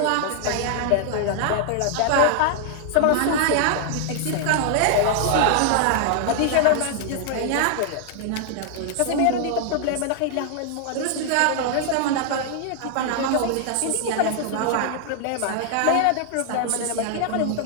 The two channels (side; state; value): both; different; correlation -0.01